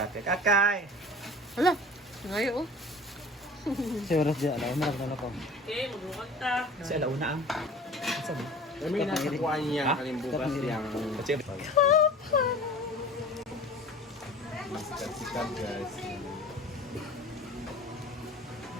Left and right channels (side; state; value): both; normal; correlation 0.42